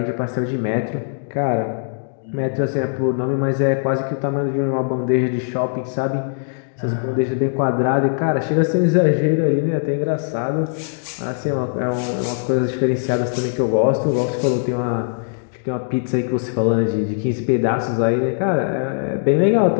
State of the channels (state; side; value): silent; right; digital silence